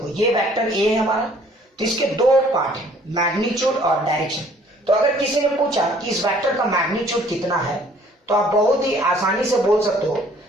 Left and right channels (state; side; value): normal; both; correlation 0.58